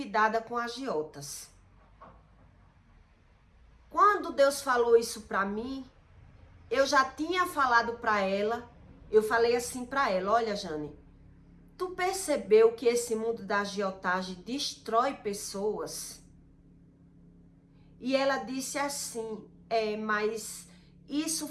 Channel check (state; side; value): identical; both; correlation 1.00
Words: com agiotas. Quando Deus falou isso para mim, eu já tinha falado para ela, eu falei assim para ela: olha, Jane, tu percebeu que esse mundo da agiotagem destrói pessoas? E ela disse assim: mas isso